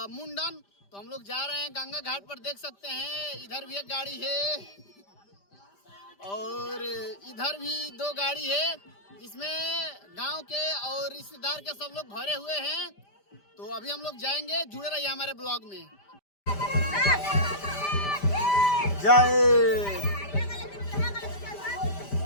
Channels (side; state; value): right; late; 5.1 ms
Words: मुंडन। तो हम लोग जा रहे हैं गंगा घाट पर। देख सकते हैं इधर भी एक गाड़ी है और इधर भी 2 गाड़ी है, जिसमें गांव के और रिश्तेदार के सब लोग भरे हुए हैं। तो अभी हम लोग जाएंगे, जुड़े रहिए हमारे ब्लॉग में। जय।